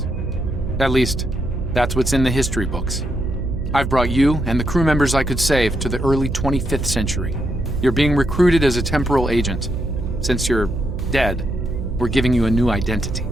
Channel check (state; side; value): noise; right; hum, 5 dB below the sound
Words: At least, that's what's in the history books. I've brought you and the crew members I could save to the early 25th century. You're being recruited as a temporal agent. Since you're dead, we're giving you a new identity.